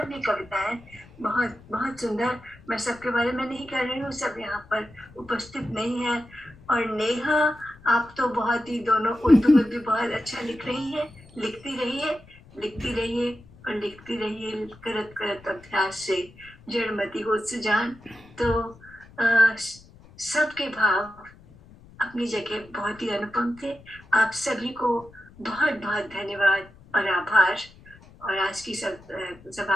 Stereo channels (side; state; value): left; noise; rumble, 23 dB below the sound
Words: भी कविताएं बहुत बहुत सुंदर, मैं सबके बारे में नहीं कह रही हूँ, सब यहाँ पर उपस्थित नहीं है। और नेहा, आप तो बहुत ही, दोनों उर्दू में भी बहुत अच्छा लिख रही है, लिखती रहिए और लिखती रहिए, करत करत अभ्यास से जड़मती हो सुजान। तो सबके भाव अपनी जगह बहुत ही अनुपम थे। आप सभी को बहुत बहुत धन्यवाद और आभार, और आज की